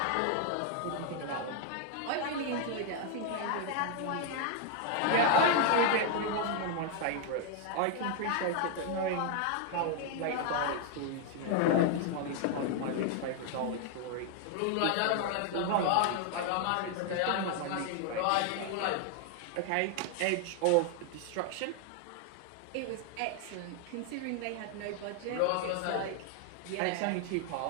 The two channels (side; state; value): both; different; correlation 0.00